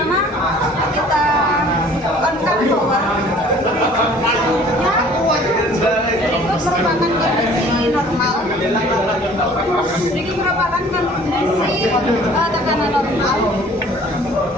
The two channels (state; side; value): normal; both; correlation 0.52